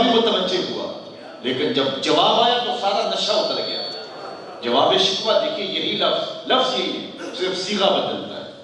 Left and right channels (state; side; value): identical; both; correlation 1.00